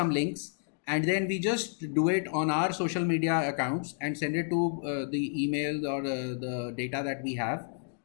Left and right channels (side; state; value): right; silent; digital silence